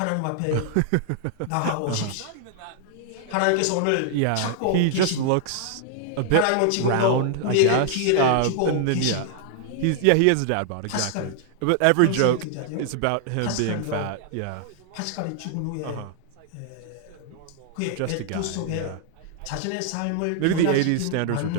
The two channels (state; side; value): different; both; correlation 0.00